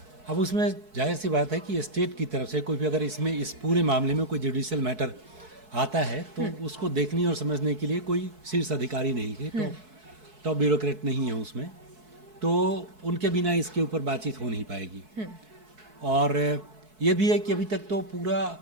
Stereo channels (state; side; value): late; left; 4.6 ms